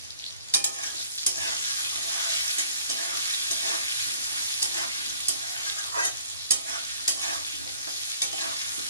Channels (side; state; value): both; inverted; correlation -0.56